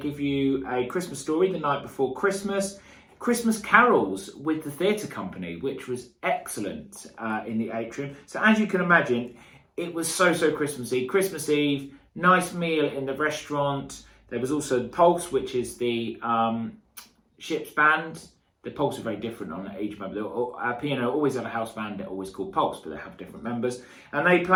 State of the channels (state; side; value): identical; both; correlation 1.00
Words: you a Christmas story the night before Christmas. Christmas carols with the theatre company, which was excellent in the atrium. So as you can imagine, it was so Christmassy. Christmas Eve, nice meal in the restaurant. There was also the Pulse, which is the ship's band. The Pulse are very different on each member. P&O always have a house band, they're always called Pulse, but they have different members. And they